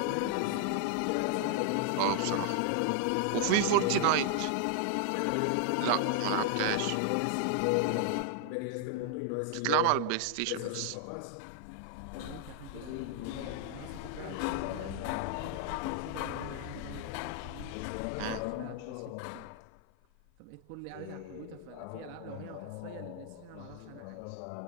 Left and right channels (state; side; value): different; both; correlation 0.00